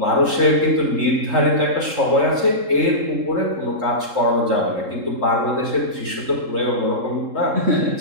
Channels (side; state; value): left; late; 3.7 ms